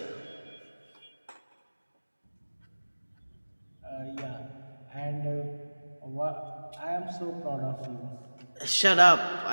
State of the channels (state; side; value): inverted; both; correlation -1.00